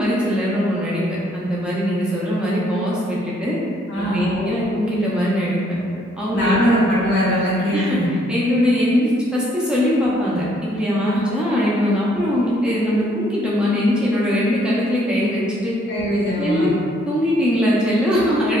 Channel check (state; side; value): normal; both; correlation 0.67